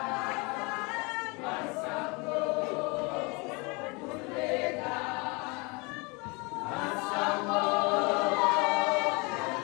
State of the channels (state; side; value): quieter; right; 28.4 dB